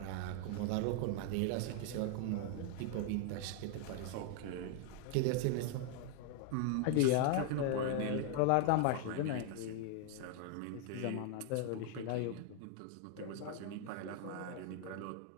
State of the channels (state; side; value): different; both; correlation 0.00